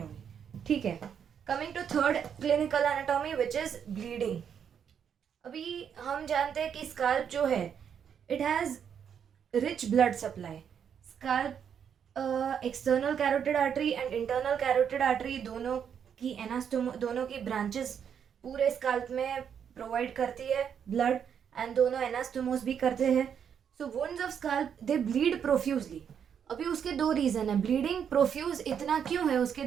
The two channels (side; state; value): left; quieter; 7.9 dB